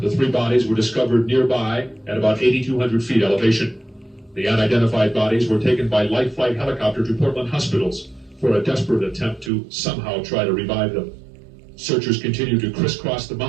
The 3 bodies were discovered nearby at about 8,200 feet elevation. The unidentified bodies were taken by light flight helicopter to Portland hospitals for a desperate attempt to somehow try to revive them. Searchers continue to crisscross the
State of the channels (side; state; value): left; drops out; at 9.5 s